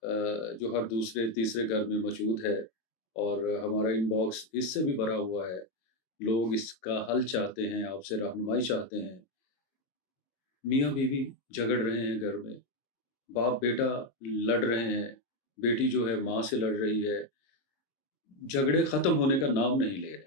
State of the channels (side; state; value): right; late; 22 ms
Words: جو ہر دوسرے تیسرے گھر میں موجود ہے اور ہمارا ان باکس اس سے بھی بھرا ہوا ہے. لوگ اس کا حل چاہتے ہیں، آپ سے رہنمائی چاہتے ہیں. میاں بیوی جھگڑ رہے ہیں گھر میں، باپ بیٹا لڑ رہے ہیں، بیٹی جو ہے ماں سے لڑ رہی ہے، جھگڑے ختم ہونے کا نام نہیں لے